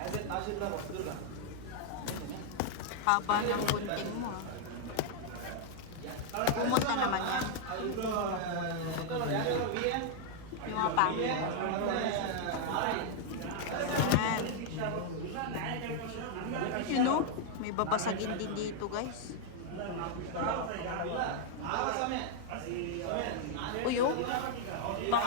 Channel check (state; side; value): different; both; correlation 0.00